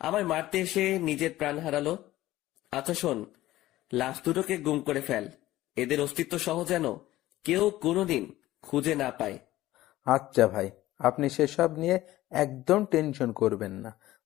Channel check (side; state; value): right; quieter; 15.8 dB